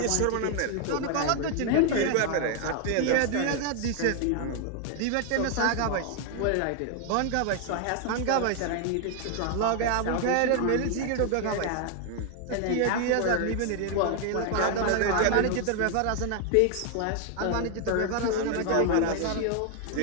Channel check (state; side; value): different; both; correlation 0.00